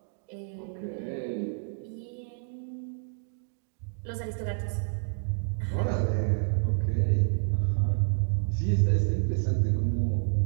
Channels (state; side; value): silent; left; digital silence